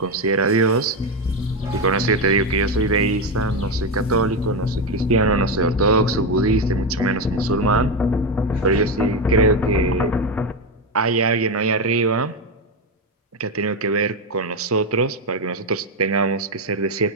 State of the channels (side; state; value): both; normal; correlation 0.11